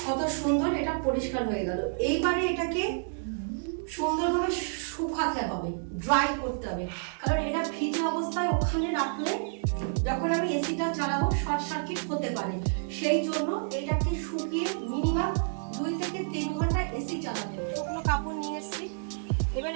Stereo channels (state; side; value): silent; left; digital silence